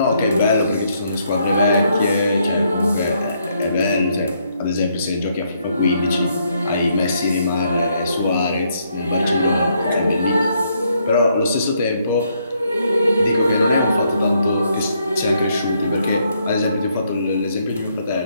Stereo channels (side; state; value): both; inverted; correlation -0.73